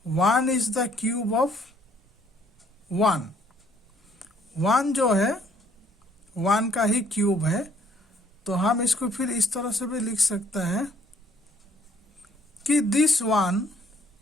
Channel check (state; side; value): normal; both; correlation 0.63